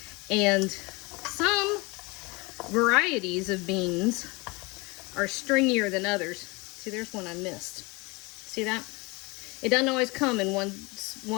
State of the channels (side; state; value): right; quieter; 25.9 dB